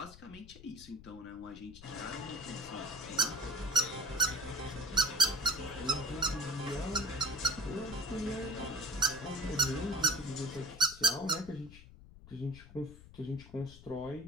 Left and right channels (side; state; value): left; noise; rumble, 18 dB below the sound